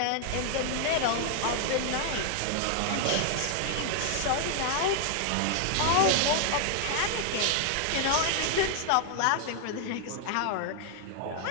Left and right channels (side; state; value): both; different; correlation 0.00